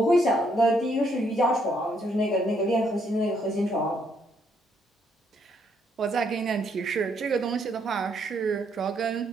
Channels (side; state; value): both; normal; correlation 0.72